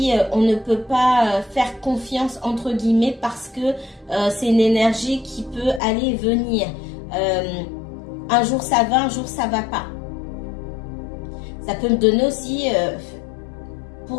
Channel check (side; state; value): right; drops out; at 5.8 s